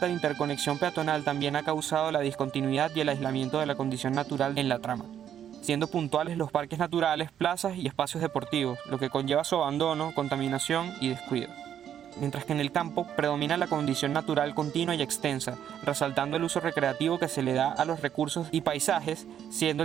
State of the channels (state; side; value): quieter; left; 9.7 dB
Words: de interconexión peatonal también ha causado la discontinuidad y el aislamiento de la condición natural en la trama, siendo puntuales los parques naturales, plazas y espacios deportivos, lo que conlleva su abandono, contaminación y descuido. Mientras que en el campo predomina la condición natural continua y extensa, resaltando el uso recreativo que se le da a los recursos y paisajes, siendo